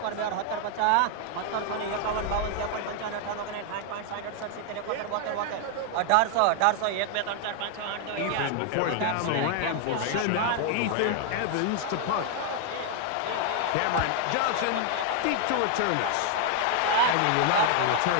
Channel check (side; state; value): both; different; correlation 0.00